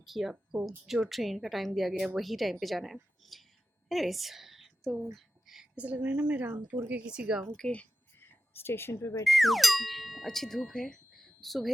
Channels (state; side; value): normal; both; correlation 0.93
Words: कि आपको जो ट्रेन का टाइम दिया गया है वही टाइम पे जाना है। एनीवेज, तो ऐसा लग रहा है ना मैं रामपुर के किसी गांव के स्टेशन पे बैठी हूँ। अच्छी धूप है,